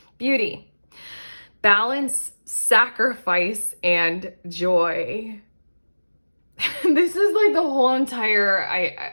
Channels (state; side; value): inverted; both; correlation -1.00